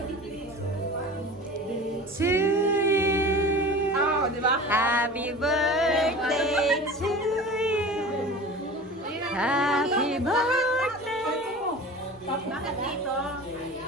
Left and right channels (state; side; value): normal; both; correlation 0.37